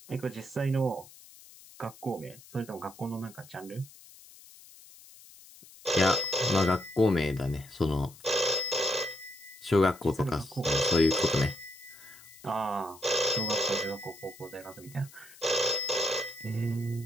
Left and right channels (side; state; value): left; noise; hiss, 21 dB below the sound